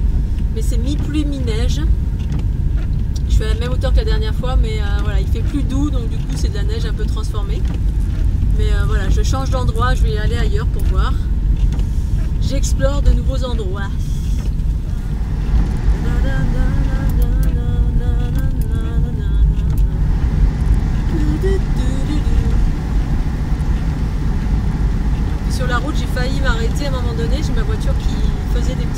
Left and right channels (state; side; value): identical; both; correlation 1.00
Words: Mais c'est mi-pluie, mi-neige. Je suis à la même hauteur que la dernière fois, mais voilà, il fait plus doux, donc du coup c'est de la neige un peu transformée. Mais voilà, je change d'endroit, je vais aller ailleurs pour voir. J'explore de nouveaux endroits. Sur la route, j'ai failli m'arrêter à un moment donné. J'ai ma voiture qui faisait des